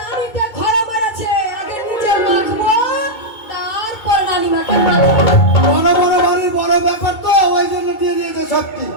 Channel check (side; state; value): right; late; 2.2 ms